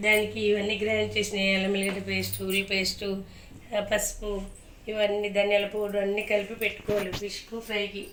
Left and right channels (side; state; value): both; identical; correlation 1.00